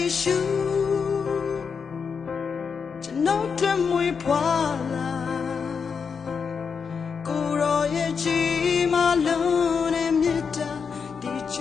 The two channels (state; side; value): quieter; right; 6.0 dB